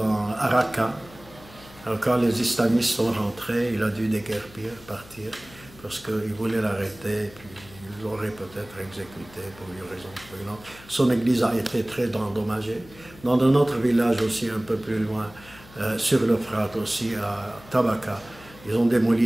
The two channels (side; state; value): left; noise; hum, 21 dB below the sound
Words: Araka. Alors quand les islamistes sont rentrés, il a dû déguerpir, partir, parce qu'ils voulaient l'arrêter, puis ils l'auraient peut-être exécuté pour une raison ou une autre. Son église a été très endommagée. Dans un autre village aussi, un peu plus loin, sur l'Euphrate aussi, à Tabaka, ils ont